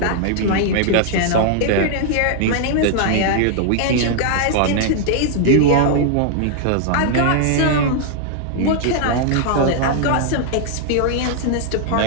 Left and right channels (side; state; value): both; different; correlation -0.01